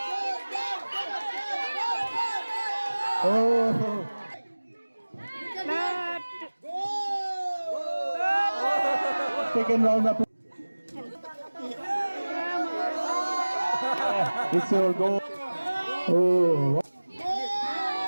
Second round of it's your goal. Oh.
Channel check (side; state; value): both; inverted; correlation -1.00